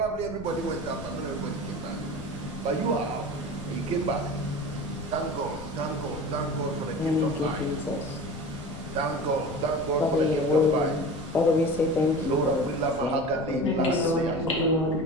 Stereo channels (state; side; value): noise; left; rumble, 13 dB below the sound